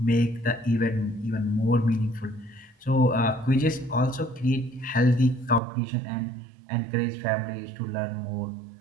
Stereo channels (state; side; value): drops out; left; at 5.6 s